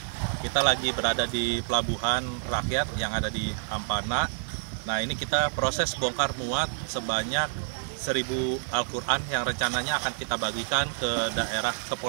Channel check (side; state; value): left; silent; 59 dB below the other